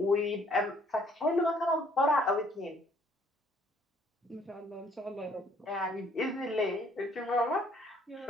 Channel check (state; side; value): normal; both; correlation 0.62